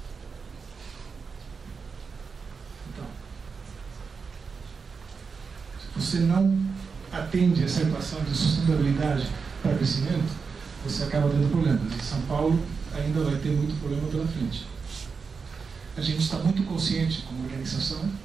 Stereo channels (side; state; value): left; quieter; 5.2 dB